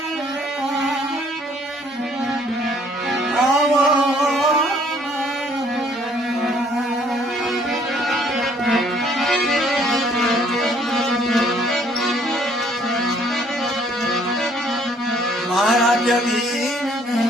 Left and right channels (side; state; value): both; normal; correlation 0.62